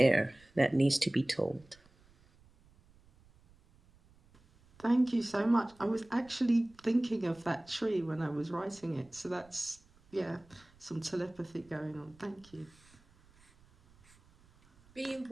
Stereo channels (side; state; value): right; noise; rumble, 29 dB below the sound